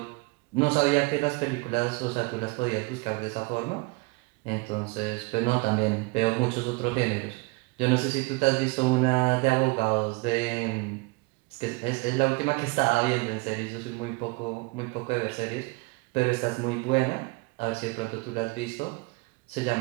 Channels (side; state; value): left; quieter; 26.9 dB